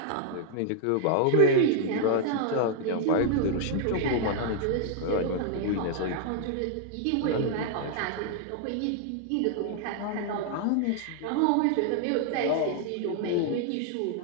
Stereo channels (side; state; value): both; different; correlation 0.00